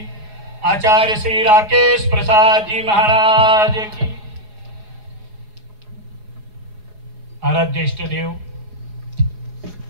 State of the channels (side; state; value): left; late; 4.8 ms